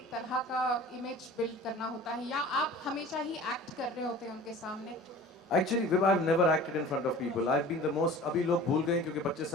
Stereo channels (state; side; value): normal; both; correlation 0.42